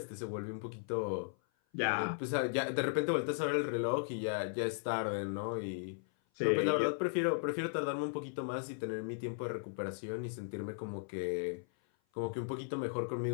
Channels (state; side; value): silent; right; 53 dB below the other